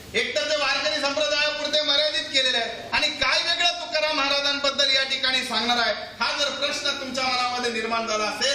एकतर ते वारकरी संप्रदायापुरते मर्यादित केलेले आहे आणि काय वेगळं तुकाराम महाराजांबद्दल या ठिकाणी सांगणार आहे. हा जर प्रश्न तुमच्या मनामध्ये निर्माण झाला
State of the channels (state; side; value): identical; both; correlation 1.00